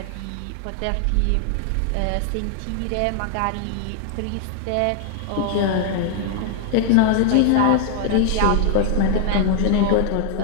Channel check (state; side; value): different; both; correlation 0.00